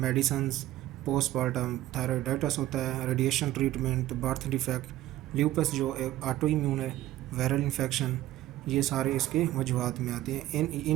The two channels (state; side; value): quieter; left; 14.7 dB